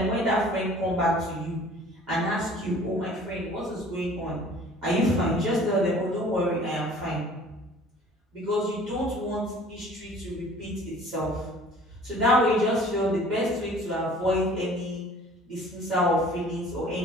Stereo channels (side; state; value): both; normal; correlation 0.49